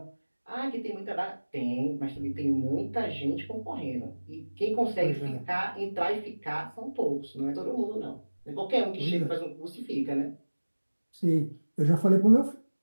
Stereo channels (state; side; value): inverted; both; correlation -1.00